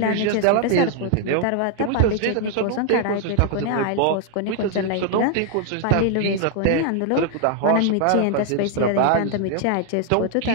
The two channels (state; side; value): different; both; correlation 0.00